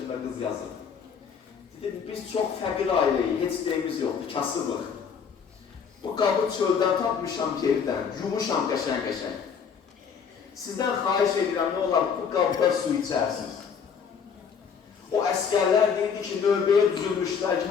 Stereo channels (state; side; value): quieter; right; 6.6 dB